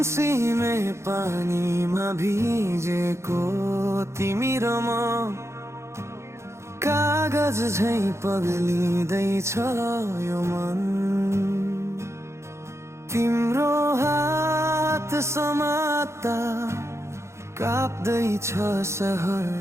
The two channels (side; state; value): left; late; 0.13 ms